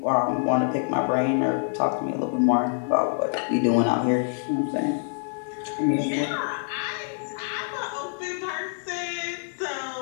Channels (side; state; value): right; silent; digital silence